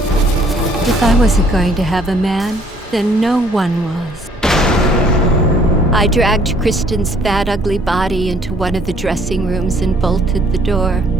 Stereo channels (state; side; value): normal; both; correlation 0.61